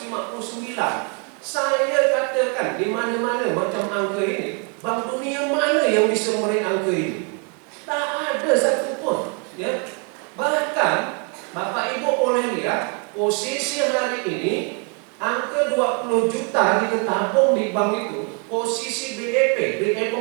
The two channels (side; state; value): left; quieter; 37.6 dB